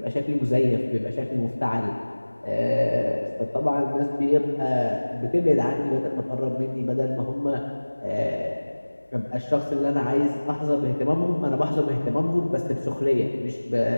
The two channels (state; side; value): inverted; both; correlation -1.00